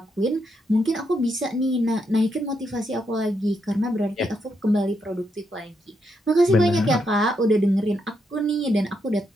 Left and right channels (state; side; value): normal; both; correlation 0.80